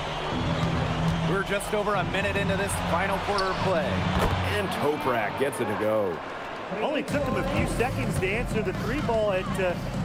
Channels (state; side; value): identical; both; correlation 1.00